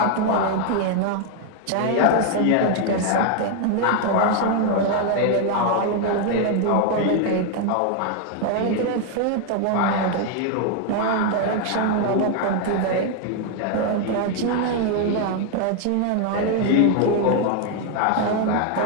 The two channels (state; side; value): different; both; correlation 0.00